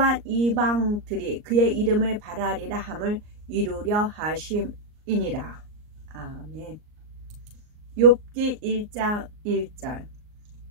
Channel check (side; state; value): left; late; 38 ms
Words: 이방들이 그의 이름을 바라리라 함을 이루려 하심이니라. 아멘. 욥기 1장 1절.